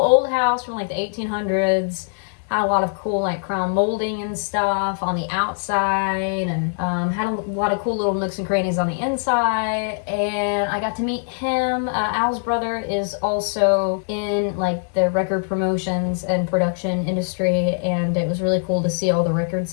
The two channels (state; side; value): silent; right; digital silence